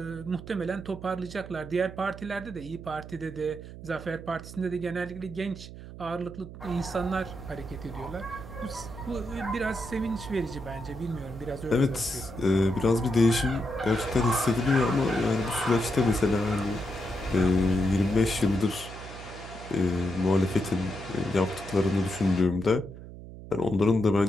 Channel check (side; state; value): right; noise; hum, 13 dB below the sound